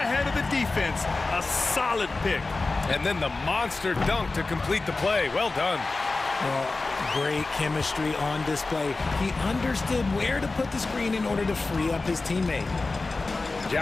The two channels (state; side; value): quieter; right; 3.5 dB